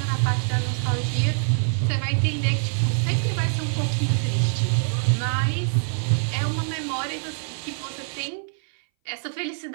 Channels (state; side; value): silent; left; 60 dB below the other